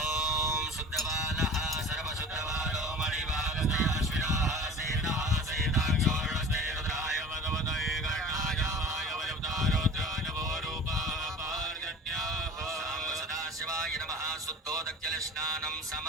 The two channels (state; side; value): normal; both; correlation 0.40